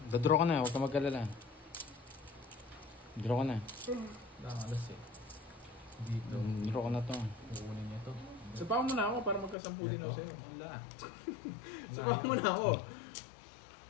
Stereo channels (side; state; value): right; drops out; at 9.6 s